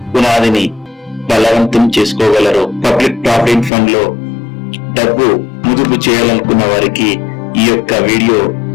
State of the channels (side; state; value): right; drops out; at 3.7 s